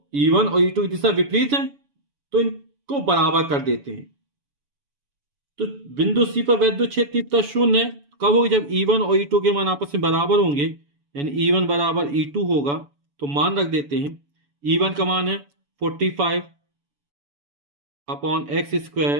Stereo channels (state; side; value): late; left; 7.0 ms